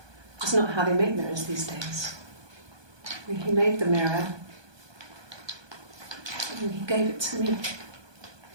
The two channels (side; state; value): left; late; 1.2 ms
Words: That's not how they make mirrors these days. I mean, he made the mirror and he gave it to me.